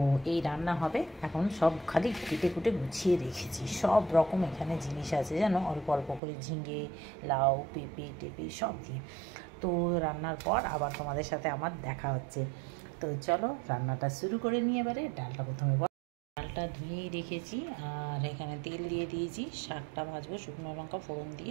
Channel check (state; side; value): drops out; left; at 6.2 s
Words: এই রান্না হবে। এখন সব খালি কেটে কুটে গুছিয়ে রেখেছি, সব রকম এখানে জিনিস আছে যেন, অল্প অল্প করে ঝিঙে, লাউ, পেঁপে টেপে সব দিয়ে। তো রান্নার পর আবার তোমাদের সাথে আমার দেখা হচ্ছে। তো চলো রান্নাটা শুরু করে নিয়ে এবারে। ডালটা প্রথমে ডালটা ধুয়েই রেখেছি, আর এখানে তেল দিয়ে দিয়েছি। শাকটা ভাজবো শুকনো লঙ্কা ফোড়ন